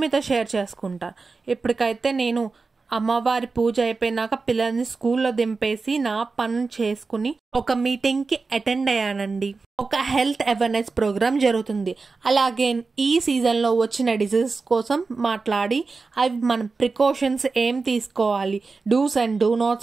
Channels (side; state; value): left; quieter; 4.2 dB